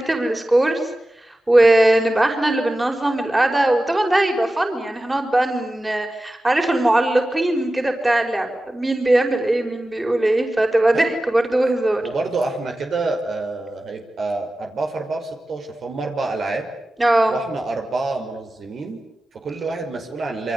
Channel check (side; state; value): both; normal; correlation 0.94